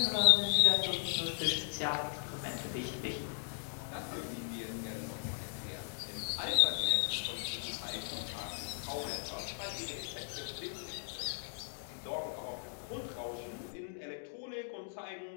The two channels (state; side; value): silent; right; digital silence